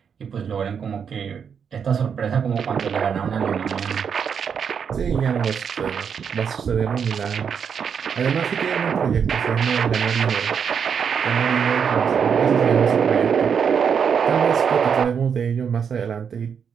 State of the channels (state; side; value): quieter; left; 7.0 dB